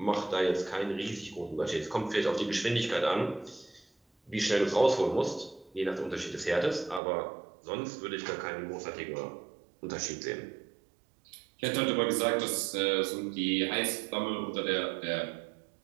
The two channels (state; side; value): drops out; left; at 7.0 s